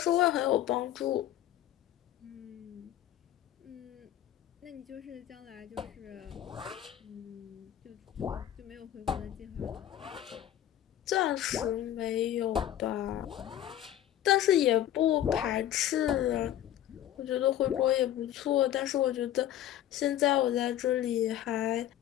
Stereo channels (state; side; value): quieter; right; 12.0 dB